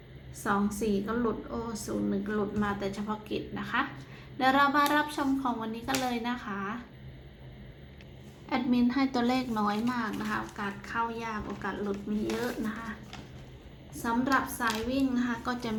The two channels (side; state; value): both; identical; correlation 1.00